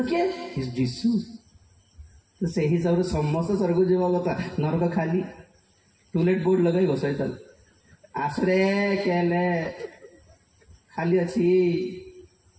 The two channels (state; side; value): identical; both; correlation 1.00